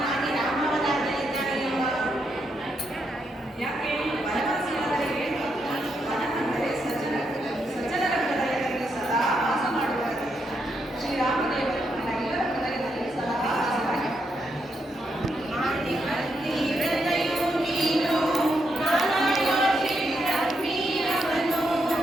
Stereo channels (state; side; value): normal; both; correlation 0.80